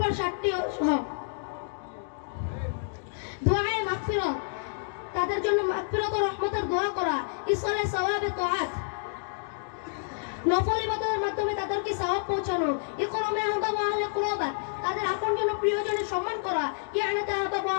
7টি হক: দুআয়ে মাগফিরাত, তাদের জন্য মাগফিরাত ও রহমতের দোয়া করা; ইসলায়ে সওয়াবে তাআত, নফল ইবাদতের মাধ্যমে তাদেরকে সওয়াব পৌঁছানো; ইকরামে আহবাব ওয়া আহলে কুরবাত, তাদের আপনজন ও প্রিয়জনের সম্মান করা; ইয়ানাত আহবাব ওয়া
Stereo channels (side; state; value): right; silent; digital silence